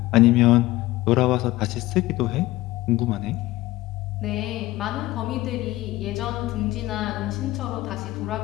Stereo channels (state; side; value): quieter; right; 17.8 dB